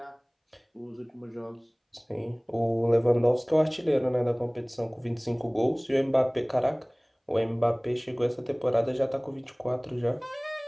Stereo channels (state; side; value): identical; both; correlation 1.00